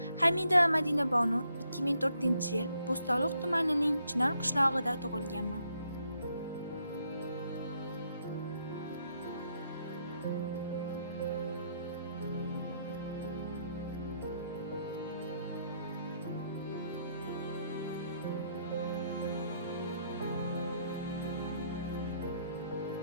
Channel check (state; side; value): inverted; both; correlation -0.74